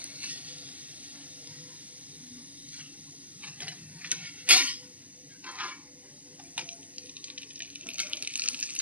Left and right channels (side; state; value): left; late; 0.076 ms